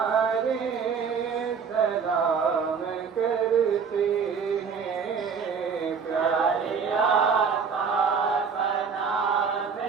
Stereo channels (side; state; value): left; quieter; 6.1 dB